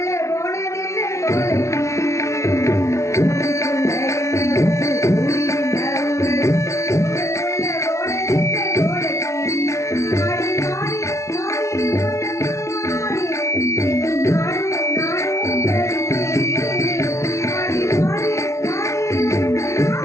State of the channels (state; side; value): late; right; 0.14 ms